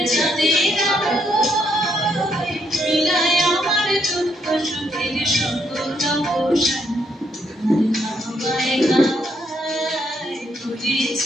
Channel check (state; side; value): normal; both; correlation 0.74